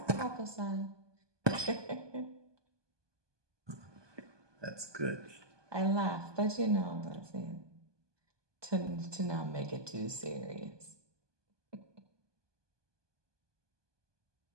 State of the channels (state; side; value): late; left; 1.2 ms